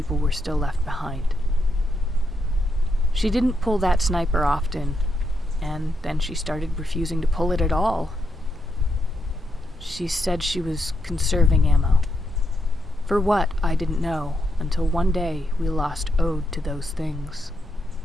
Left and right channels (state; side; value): normal; both; correlation 0.81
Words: were still left behind. She didn't pull that sniper often, and then she started refusing to pull it at all. She said she was conserving ammo. For what, I didn't know, until one day we lost Ode to those things.